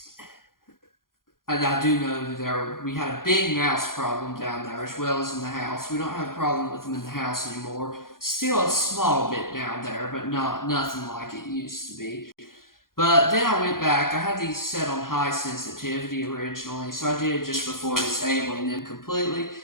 I do know that we had a big mouse problem down there as well as in the house. We don't have a problem with them in the house anymore. Still a small bit down there, but nothing like it used to be. But then I went back. I had these set on high sensitivity originally, so I did just before disabling them completely.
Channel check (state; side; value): late; right; 0.91 ms